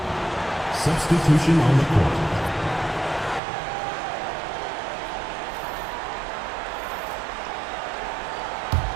Substitution on the court.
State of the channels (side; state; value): left; drops out; at 3.4 s